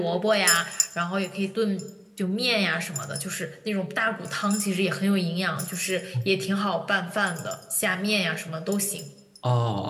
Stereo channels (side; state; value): both; identical; correlation 1.00